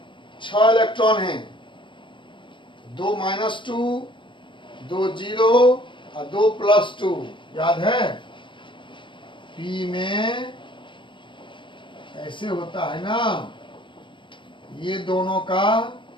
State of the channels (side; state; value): right; late; 0.24 ms